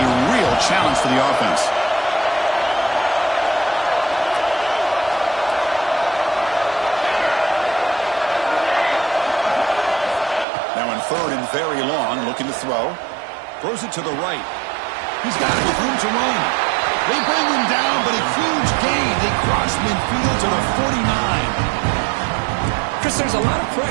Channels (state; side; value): drops out; left; at 10.5 s